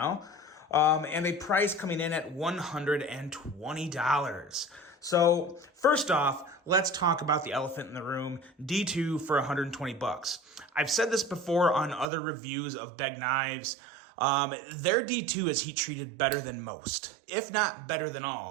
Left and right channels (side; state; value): left; drops out; at 12.1 s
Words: And a price coming in at $120. So first off, let's talk about the elephant in the room, D2 for 120 bucks. I've said this before on other reviews of Beg knives. Their D2 is heat treated better than most, if not better than